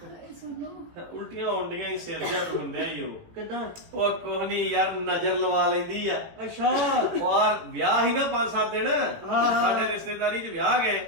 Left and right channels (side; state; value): left; late; 18 ms